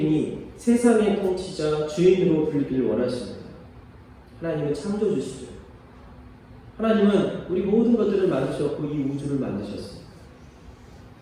세상의 통치자, 주인으로 불리길 원하십니다. 하나님은 창조주시죠. 하나님은 우리 모든 것들을 만드셨고 이 우주를 만드셨습니다.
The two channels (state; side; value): identical; both; correlation 1.00